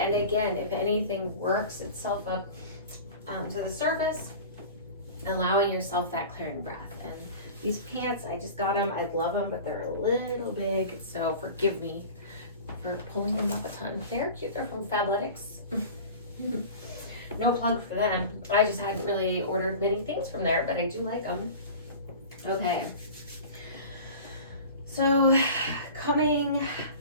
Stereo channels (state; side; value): inverted; both; correlation -0.37